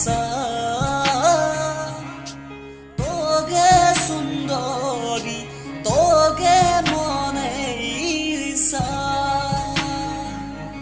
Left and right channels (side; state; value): both; identical; correlation 1.00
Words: তোকে সুন্দরী তোকে মনে ইসা